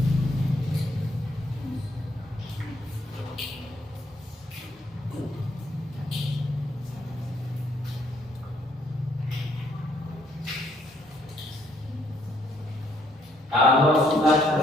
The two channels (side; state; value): both; normal; correlation 0.69